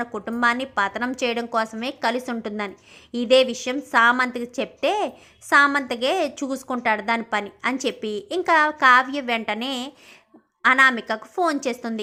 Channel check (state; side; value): identical; both; correlation 1.00